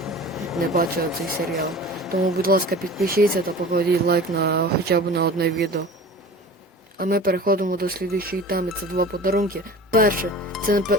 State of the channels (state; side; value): normal; both; correlation 0.39